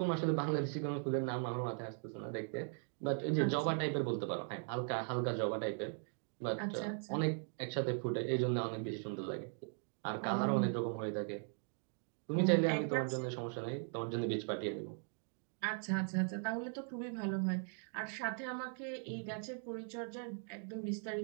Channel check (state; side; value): silent; left; 52 dB below the other